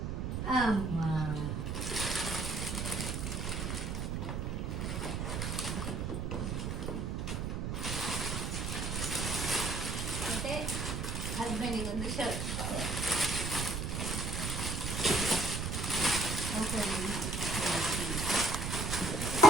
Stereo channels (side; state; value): right; noise; rumble, 2 dB below the sound